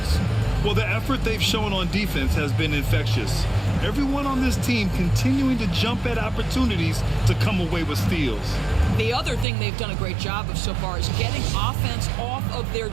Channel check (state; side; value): drops out; left; at 9.5 s